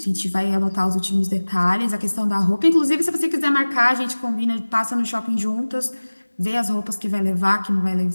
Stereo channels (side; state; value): both; inverted; correlation -1.00